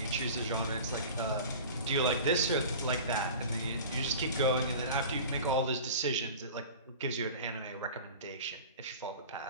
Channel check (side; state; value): both; inverted; correlation -0.37